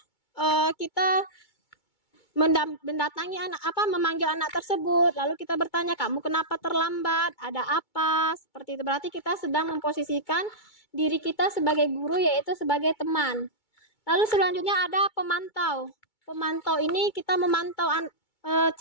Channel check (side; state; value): right; late; 2.2 ms